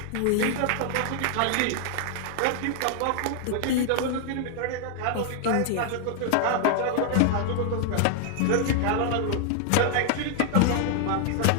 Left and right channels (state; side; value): different; both; correlation 0.00